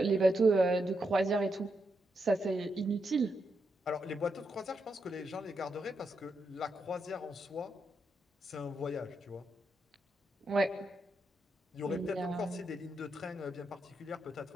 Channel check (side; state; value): both; normal; correlation 0.83